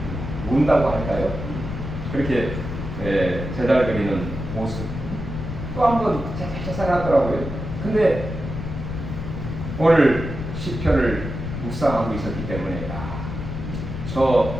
운다고 할까요? 그렇게 제달거리는 모습 또 한 번 쌀쌀 하더라고요. 근데 오늘 시편을 묵상하고 있었기 때문에 저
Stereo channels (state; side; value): noise; left; rumble, 6 dB below the sound